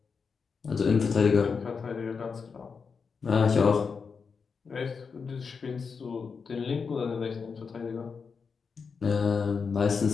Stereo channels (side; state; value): right; quieter; 5.5 dB